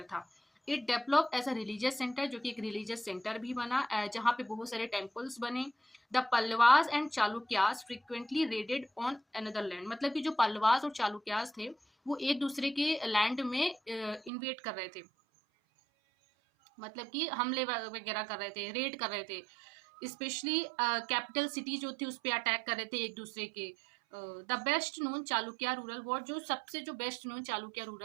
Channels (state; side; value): drops out; left; at 14.3 s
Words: था। It develop as a religious centre, जो कि एक रिलीजियस सेंटर भी बना, जहाँ पे बहुत सारे टेम्पल्स बने। The Pallavas and Chalukyas frequently raided on another land, मतलब कि जो पल्लवास और चालुक्यास थे वो एक दूसरे के लैंड में इन्वेट कर रहे थे, मतलब कि हमले वगैरह कर रहे थे, रेड कर रहे थे, स्पेशली कैपिटल सिटी जो थी उस पर अटैक कर रहे थे एक दूसरे के। The best known Chalukya rural war, जो सबसे जो बेस्ट नोन चालुक्य